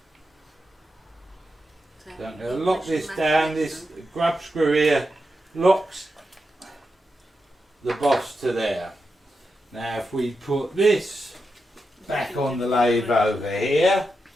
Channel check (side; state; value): both; normal; correlation 0.87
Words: So I'm going to lock this down. This grub screw here locks the boss to there. Now, if we put this back on the lathe over here.